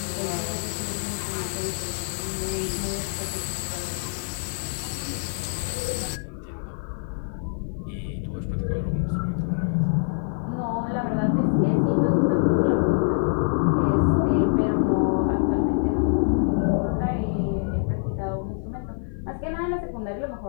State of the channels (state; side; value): silent; right; digital silence